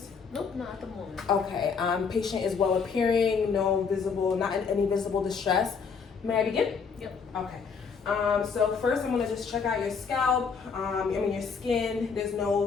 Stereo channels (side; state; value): right; quieter; 5.7 dB